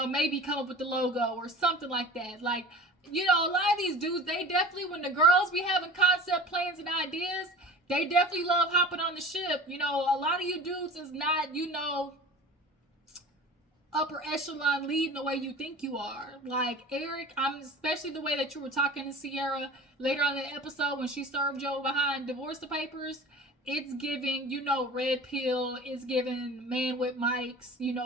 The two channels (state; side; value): normal; both; correlation 0.38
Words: maybe come up with the logo or something like that. Like, you know, a lot of these dudes, they definitely, when the girls be having concept plans and ideas, they definitely love hopping on the ship. You know, a lot of you dudes is not, you know, upper echelon leading the way you think you are. Like, Eric, especially the way that you were talking to Sierra later on in the episode when she served Joe behind divorce papers. It's giving, you know, red pill. It's giving man with mics, you